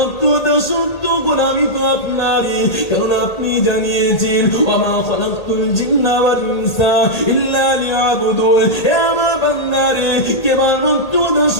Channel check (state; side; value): late; right; 1.8 ms